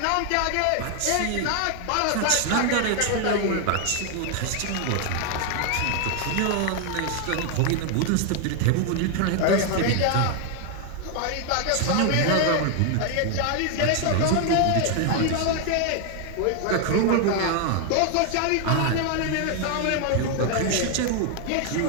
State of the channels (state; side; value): different; both; correlation 0.01